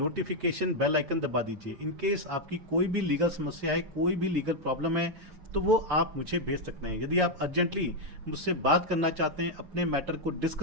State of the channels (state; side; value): late; left; 6.6 ms